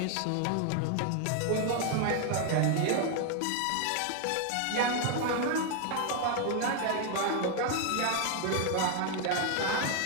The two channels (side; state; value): both; different; correlation 0.01